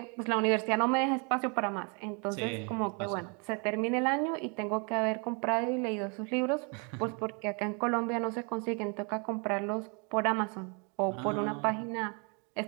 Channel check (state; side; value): quieter; left; 34.8 dB